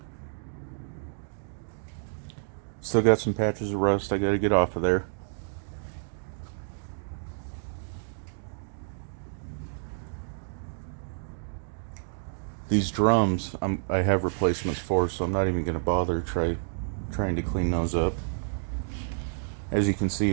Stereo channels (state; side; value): silent; left; digital silence